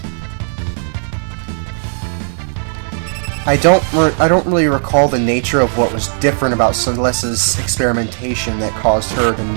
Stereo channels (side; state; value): left; silent; 62 dB below the other